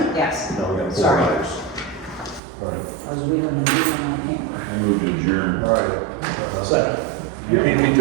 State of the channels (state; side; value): drops out; left; at 2.4 s